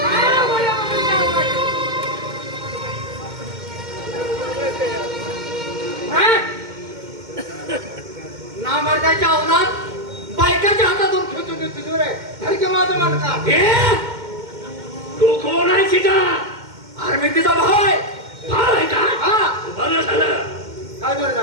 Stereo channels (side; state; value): left; late; 2.1 ms